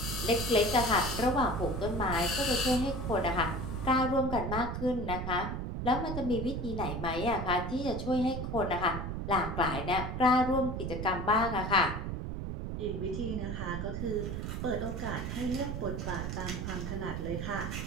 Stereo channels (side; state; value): right; noise; rumble, 4 dB below the sound